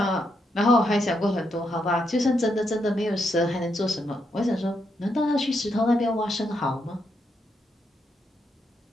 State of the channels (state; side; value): normal; both; correlation 0.80